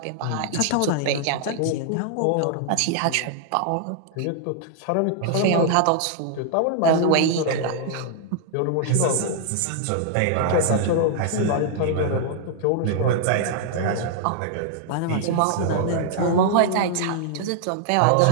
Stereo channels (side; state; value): both; different; correlation -0.01